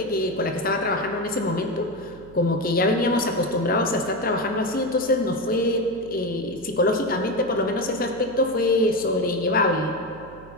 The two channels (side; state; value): right; noise; hum, 19 dB below the sound